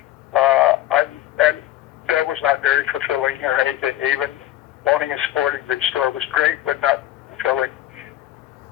And that was not very fulfilling or anything. Even owning a sporting goods store was great, but not fulfilling.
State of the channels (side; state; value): right; quieter; 14.1 dB